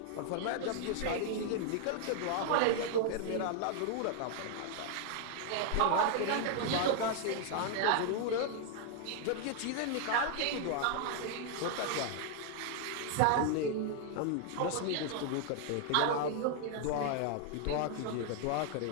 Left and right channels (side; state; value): both; different; correlation 0.00